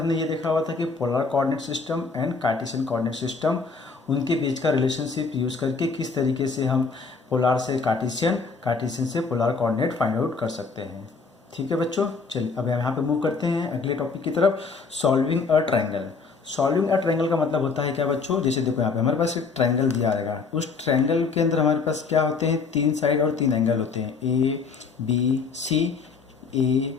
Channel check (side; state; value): right; quieter; 4.7 dB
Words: ये देखा हुआ था कि polar coordinate system and Cartesian coordinate system, उनके बीच का रिलेशनशिप यूज़ करके किस तरीके से हम पोलर से कार्टेशियन, कार्टेशियन से पोलर कोऑर्डिनेट फाइंड आउट कर सकते हैं। ठीक है बच्चों, चलिए अब यहाँ पे मूव करते हैं अगले टॉपिक की तरफ, solving a triangle. Solving a triangle का मतलब होता है क्या बच्चों, जैसे देखो यहाँ पे हमारे पास एक ट्रायंगल दिया रहेगा, उस ट्रायंगल के अंदर हमारे पास क्या होते हैं, 3 साइड और 3 एंगल होते हैं, ए बी सी, ए